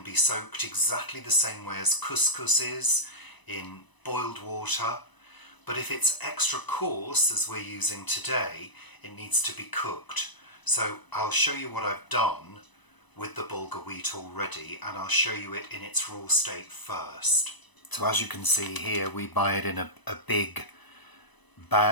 be soaked exactly the same way as couscous is, in boiled water. But if it's extra coarse, as we're using today, it needs to be cooked. So I'll show you what I've done with the Bulgur wheat already, and I'll show you it in its raw state first. So as you can see here, we buy it in a big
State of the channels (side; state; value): right; late; 1.0 ms